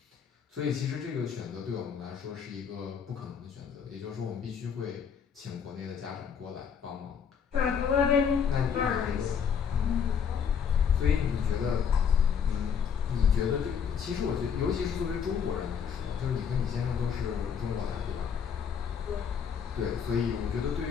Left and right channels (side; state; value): right; quieter; 7.2 dB